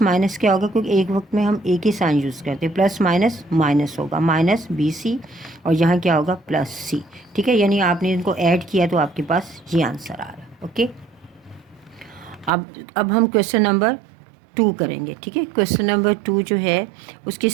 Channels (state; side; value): drops out; left; at 12.5 s